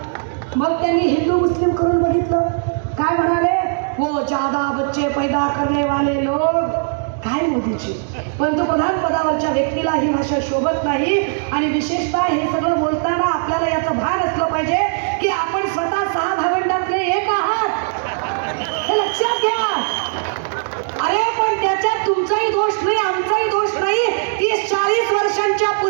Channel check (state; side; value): silent; left; digital silence